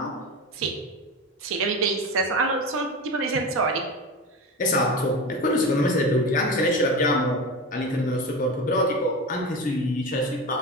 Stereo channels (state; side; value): normal; both; correlation 0.25